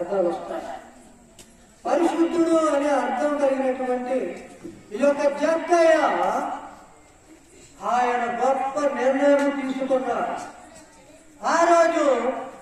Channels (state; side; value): identical; both; correlation 1.00